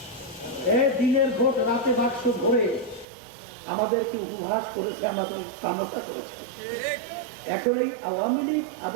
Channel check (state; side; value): drops out; left; at 3.1 s